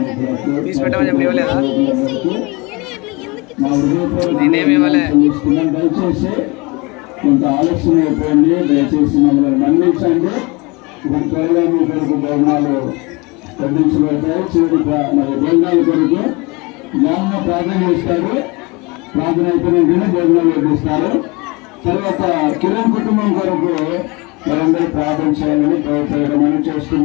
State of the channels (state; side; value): quieter; right; 26.1 dB